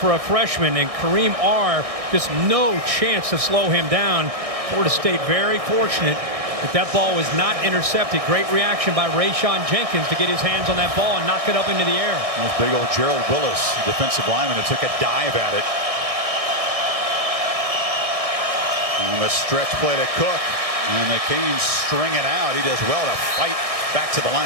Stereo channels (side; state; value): left; late; 1.6 ms